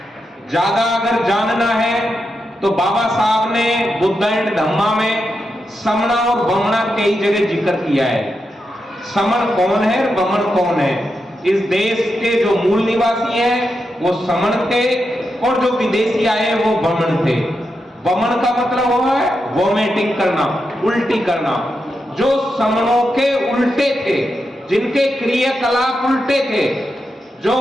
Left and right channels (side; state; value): both; normal; correlation 0.86